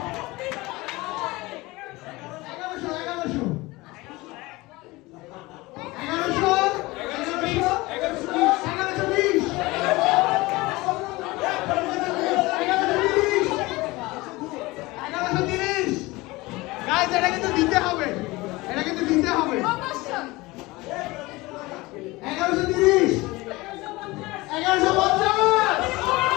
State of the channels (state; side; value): quieter; right; 21.4 dB